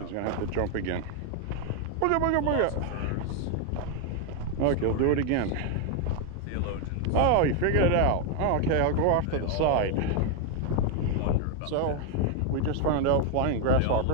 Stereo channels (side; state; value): both; different; correlation 0.01